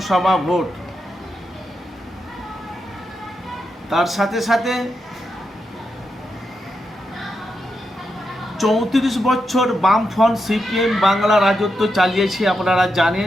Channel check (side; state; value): both; normal; correlation 0.85